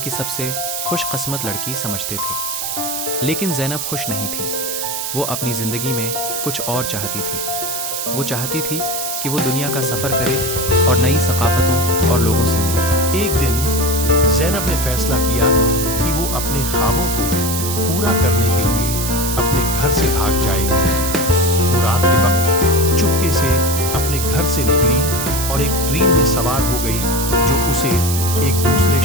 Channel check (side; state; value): right; noise; hiss, 3 dB below the sound